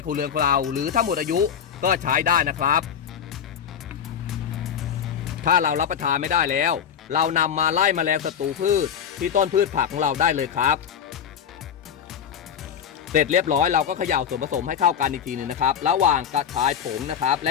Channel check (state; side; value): quieter; right; 8.3 dB